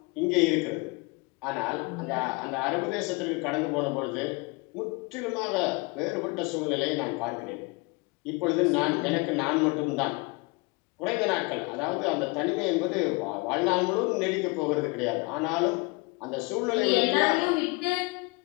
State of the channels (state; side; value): quieter; right; 27.4 dB